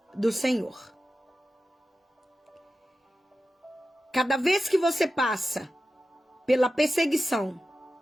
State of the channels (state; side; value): normal; both; correlation 0.92